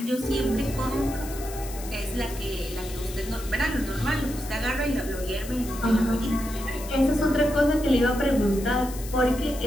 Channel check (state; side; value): noise; left; hiss, 14 dB below the sound